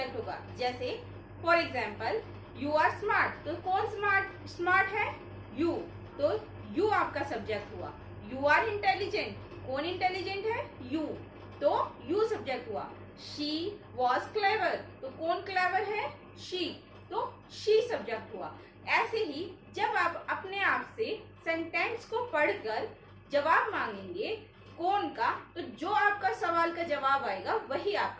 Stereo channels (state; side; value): identical; both; correlation 1.00